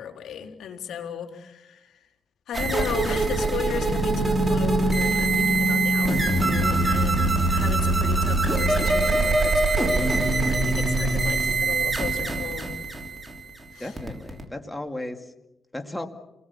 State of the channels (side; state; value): both; normal; correlation 0.75